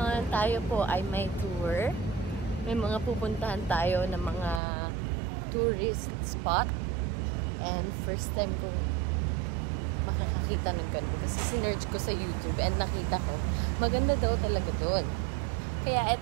tayo po ay may tour. May mga pupuntahan tayo ng mga tourist spot. And first time kong makakakita ng ganun. Kasi sinerge ko sa YouTube and nakita ko, maganda daw talaga doon. Kaya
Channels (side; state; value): left; drops out; at 4.6 s